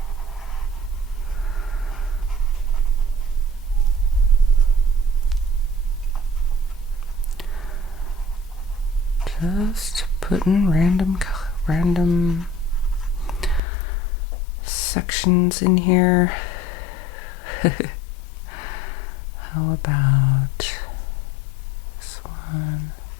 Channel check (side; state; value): right; drops out; at 13.6 s